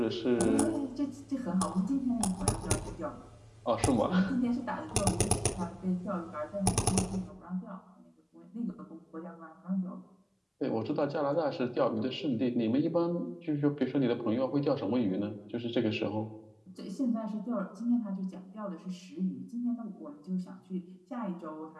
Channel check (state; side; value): identical; both; correlation 1.00